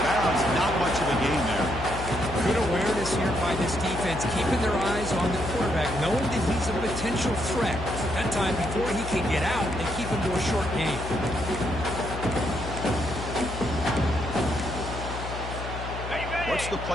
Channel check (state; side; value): noise; left; hum, 8 dB below the sound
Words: bounds. Not much of a gain there. Good awareness here by this defense, keeping their eyes on the quarterback, knowing that he's a potential threat. That time, before he can get out, they keep him to a short gain. What's the